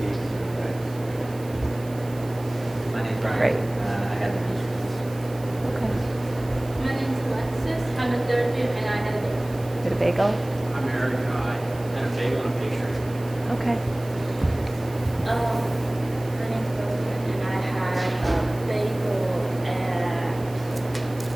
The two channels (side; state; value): right; noise; hiss, 21 dB below the sound